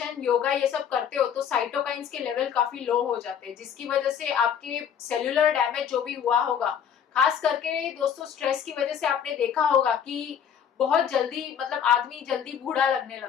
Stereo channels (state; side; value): quieter; right; 8.3 dB